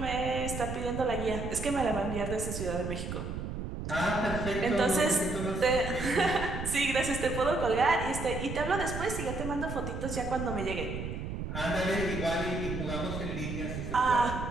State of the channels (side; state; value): right; noise; rumble, 5 dB below the sound